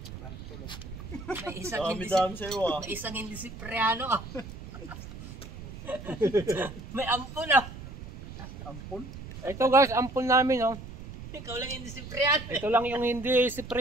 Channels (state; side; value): noise; right; rumble, 12 dB below the sound